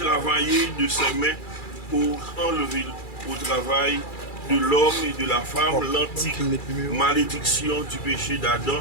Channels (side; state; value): right; late; 2.3 ms